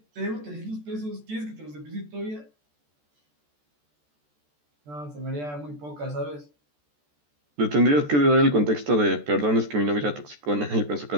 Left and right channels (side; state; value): left; late; 14 ms